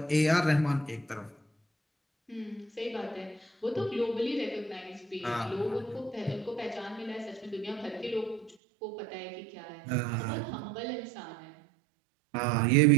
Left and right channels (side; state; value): left; drops out; at 8.6 s